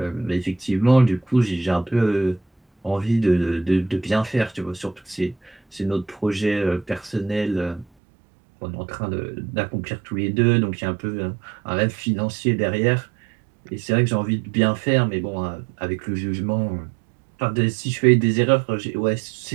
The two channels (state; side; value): drops out; left; at 7.9 s